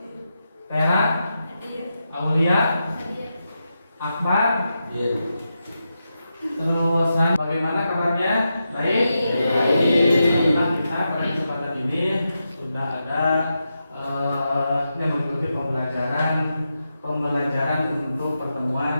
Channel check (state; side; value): inverted; both; correlation -0.87